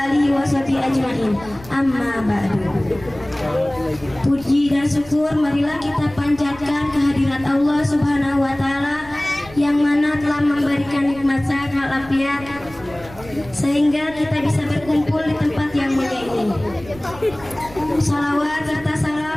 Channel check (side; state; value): right; noise; rumble, 19 dB below the sound